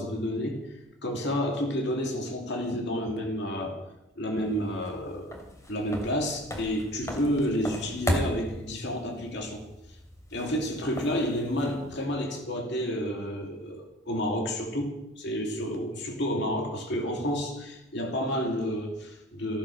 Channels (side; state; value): both; normal; correlation 0.44